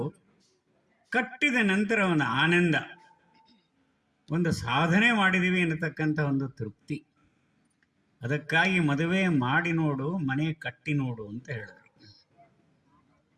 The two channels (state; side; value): identical; both; correlation 1.00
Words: ಕಟ್ಟಿದ ನಂತರ ಒಂದು ಆನಂದ, ಒಂದು ಸಾಧನೆ ಮಾಡಿದ್ದೀವಿ ಅನ್ನತಕ್ಕಂಥ ಒಂದು ತೃಪ್ತಿ. ಅದಕ್ಕಾಗಿ ಮದುವೆ ಮಾಡಿ ನೋಡು, ಮನೆ ಕಟ್ಟಿ ನೋಡು ಅಂತ ಹೇಳಿದರು.